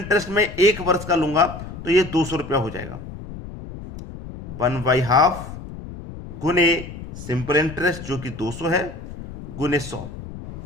में 1 वर्ष का लूंगा तो ये 200 रुपया हो जाएगा, 1/2 गुने सिंपल इंटरेस्ट जो कि 200 है गुने 100।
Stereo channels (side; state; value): left; noise; rumble, 12 dB below the sound